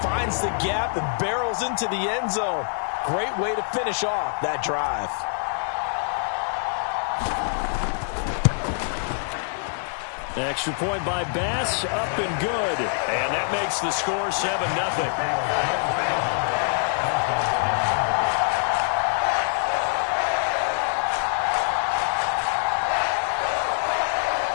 finds the gap and barrels into the end zone. Great way to finish off that drive. Extra point by Bass, up and good. And that makes the score 7-0.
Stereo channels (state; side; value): silent; right; 61 dB below the other